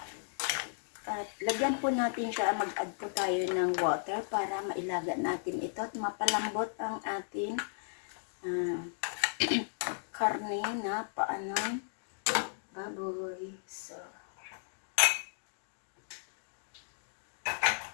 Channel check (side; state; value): right; silent; digital silence